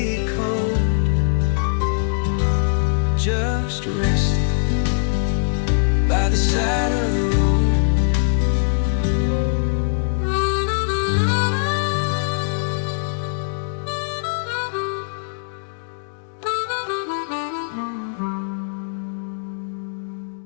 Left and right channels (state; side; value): silent; right; digital silence